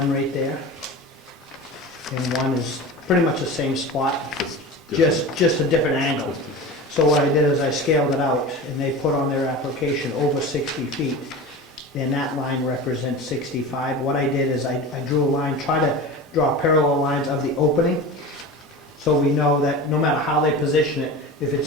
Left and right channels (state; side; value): normal; both; correlation 0.31